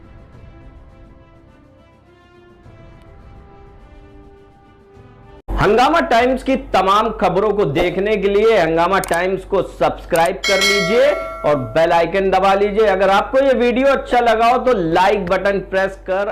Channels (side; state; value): both; identical; correlation 1.00